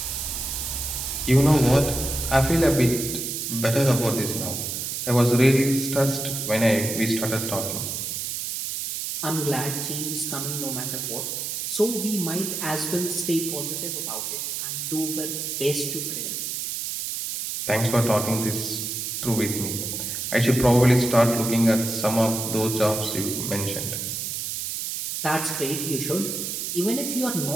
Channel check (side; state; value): right; noise; hiss, 3 dB below the sound